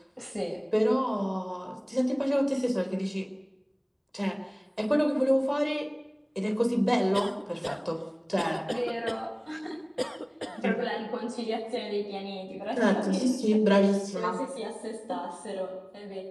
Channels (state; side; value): identical; both; correlation 1.00